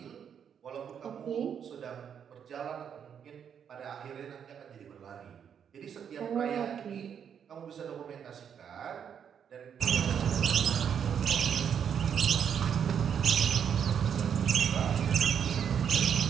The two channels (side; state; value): left; quieter; 8.0 dB